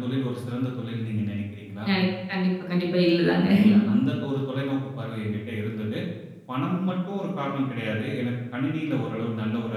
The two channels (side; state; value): both; identical; correlation 1.00